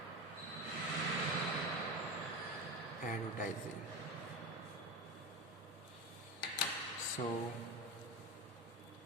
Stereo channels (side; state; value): both; normal; correlation 0.23